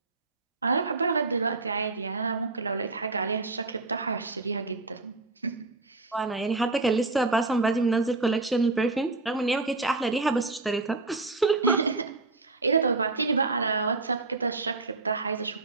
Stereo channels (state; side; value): quieter; left; 3.4 dB